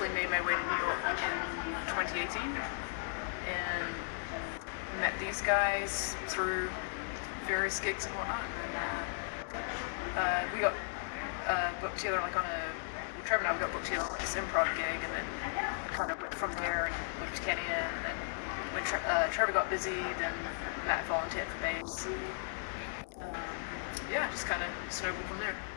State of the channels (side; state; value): right; silent; digital silence